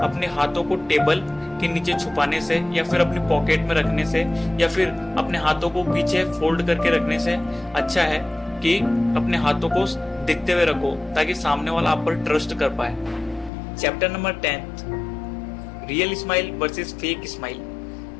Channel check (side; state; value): right; drops out; at 13.5 s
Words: अपने हाथों को टेबल के नीचे छुपाने से या फिर अपनी पॉकेट में रखने से या फिर अपने हाथों को पीछे फोल्ड करके रखने से अच्छा है कि अपने हाथों को दिखते हुए रखो ताकि सामने वाला आप पर ट्रस्ट कर पाए। Chapter number 10, real smile versus fake smile.